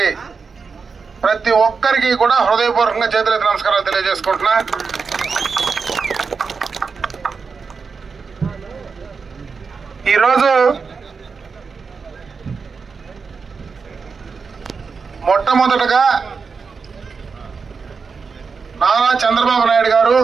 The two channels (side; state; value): left; quieter; 5.2 dB